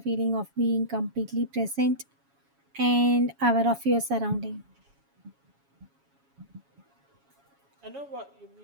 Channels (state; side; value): late; left; 7.2 ms